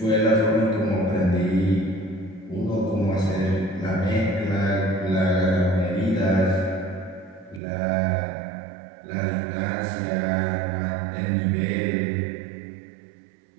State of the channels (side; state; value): left; drops out; at 7.6 s